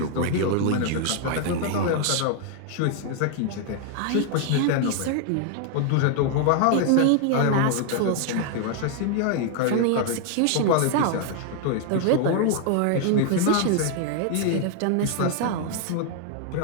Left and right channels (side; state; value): both; different; correlation 0.00